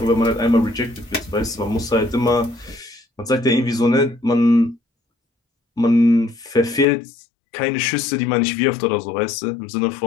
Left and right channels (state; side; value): drops out; right; at 6.9 s